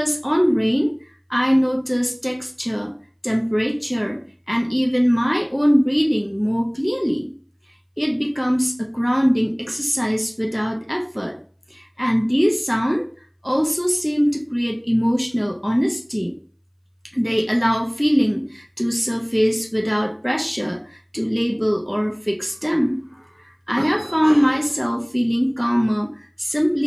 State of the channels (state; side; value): identical; both; correlation 1.00